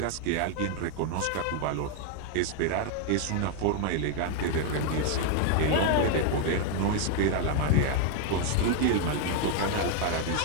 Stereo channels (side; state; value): both; different; correlation 0.00